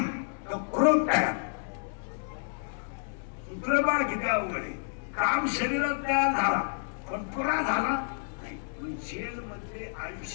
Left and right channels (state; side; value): silent; right; 58 dB below the other